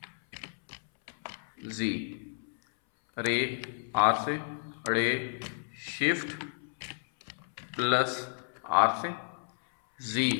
जी, रे आर से, रे शिफ्ट प्लस आर से,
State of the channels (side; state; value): right; silent; 57 dB below the other